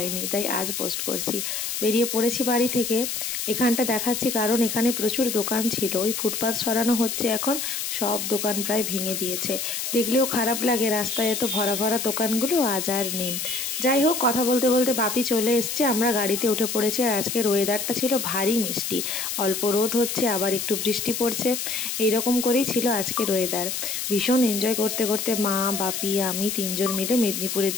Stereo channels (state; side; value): noise; left; hiss, 3 dB below the sound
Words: তাই আজ পোস্ট করছি। বেরিয়ে পড়েছি বাড়ি থেকে। এখানটা দেখাচ্ছি কারণ এখানে প্রচুর দোকান ছিল। ওই ফুটপাথ সরানো হচ্ছে এখন, সব দোকান প্রায় ভেঙে দিয়েছে। দেখলেও খারাপ লাগে, রাস্তায় এত ভরা ভরা দোকানগুলো আজ আর নেই। যাই হোক, কথা বলতে বলতে বাপি চলে এসছে, আমরা গাড়িতে উঠে পড়েছি। আর আজকের ওয়েদারটা ছিল ভারী মিষ্টি, অল্প রোদ হচ্ছে আবার একটু বৃষ্টি পড়ছে, এইরকম করেই ছিল আজকের ওয়েদার। ভীষণ এনজয় করতে করতে মা, বাপি, আমি তিনজন মিলে মেদিনীপুরের